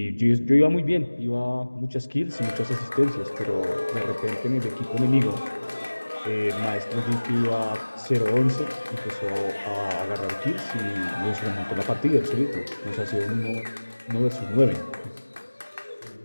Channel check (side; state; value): both; inverted; correlation -1.00